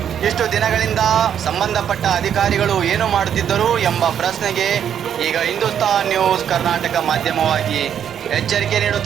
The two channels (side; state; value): left; quieter; 9.0 dB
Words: ಇಷ್ಟು ದಿನಗಳಿಂದ ಸಂಬಂಧಪಟ್ಟ ಅಧಿಕಾರಿಗಳು ಏನು ಮಾಡುತ್ತಿದ್ದರು ಎಂಬ ಪ್ರಶ್ನೆಗೆ ಈಗ ಹಿಂದೂಸ್ತಾನ್ ನ್ಯೂಸ್ ಕರ್ನಾಟಕ ಮಾಧ್ಯಮವಾಗಿ ಎಚ್ಚರಿಕೆ